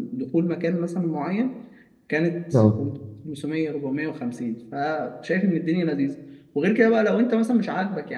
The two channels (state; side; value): identical; both; correlation 1.00